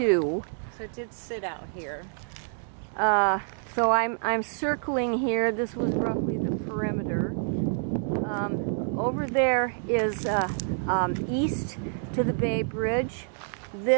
So it did sit out here. So I'm circling here. This was roughly the perimeter. Over there is east to the Bay Bridge.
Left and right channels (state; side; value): silent; left; digital silence